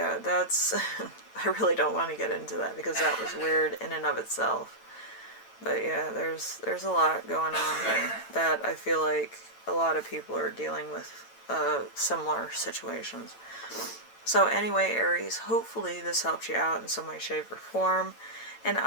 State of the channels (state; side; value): late; right; 8.9 ms